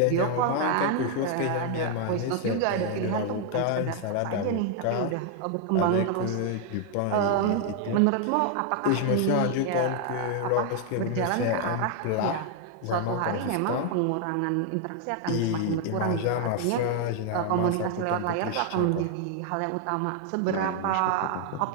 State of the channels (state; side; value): different; both; correlation 0.00